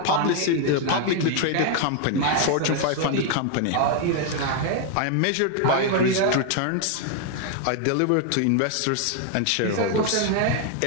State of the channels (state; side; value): different; both; correlation 0.00